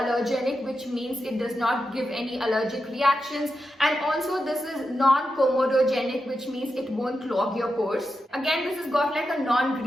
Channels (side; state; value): both; normal; correlation 0.88